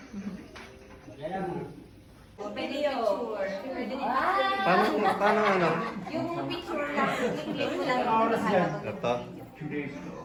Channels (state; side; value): identical; both; correlation 1.00